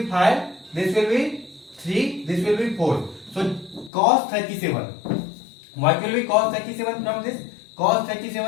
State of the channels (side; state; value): right; drops out; at 3.9 s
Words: 5, this will be 3, this will be 4. So cos 37. What will be cos 37 from this? Cos